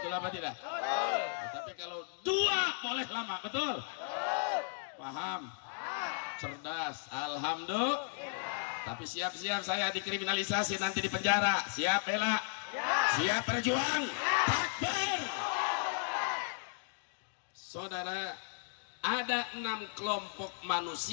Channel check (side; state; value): right; silent; digital silence